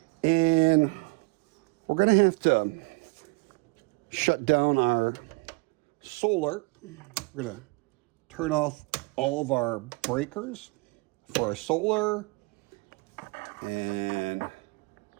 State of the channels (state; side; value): quieter; left; 27.3 dB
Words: And we're going to have to shut down our solar. We're going to turn off all of our breakers for our solar and